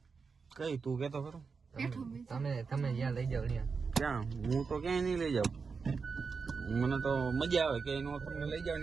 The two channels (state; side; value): quieter; left; 5.1 dB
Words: કઈ તું કેતો ખરો તમે જ્યાં લઈ જાવ ત્યાં. ક્યાં હું તો ક્યાંય નહીં લઈ જાઉં. મને તો મજા આવે કે એનો તમને લઈ જાવ